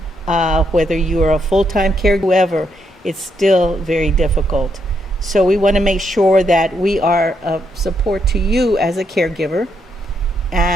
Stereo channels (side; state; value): both; normal; correlation 0.77